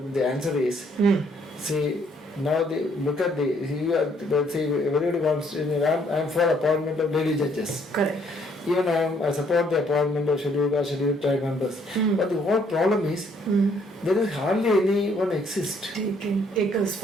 the answer is, see, now look at everybody wants, I'm for appointment of lady judges. Correct. Even I support the appointment of scheduled tribe members. But the whole problem is, there is hardly anyone exist. Takers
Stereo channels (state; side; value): normal; both; correlation 0.66